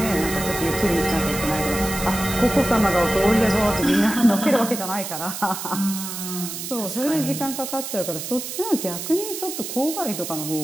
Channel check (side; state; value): right; noise; hiss, 7 dB below the sound